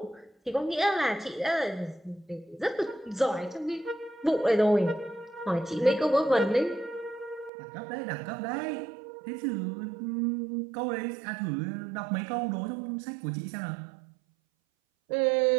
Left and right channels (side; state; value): left; drops out; at 7.5 s